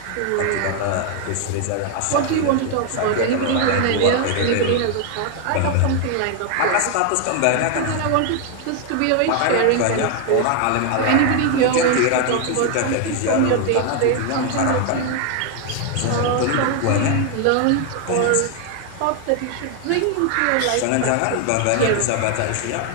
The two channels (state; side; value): different; both; correlation 0.00